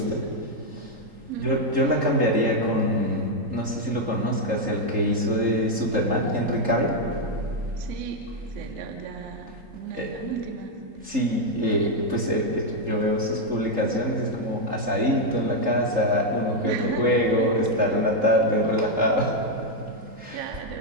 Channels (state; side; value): late; left; 3.7 ms